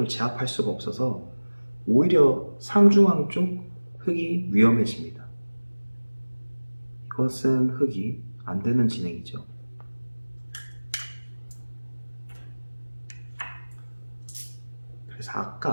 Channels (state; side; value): inverted; both; correlation -1.00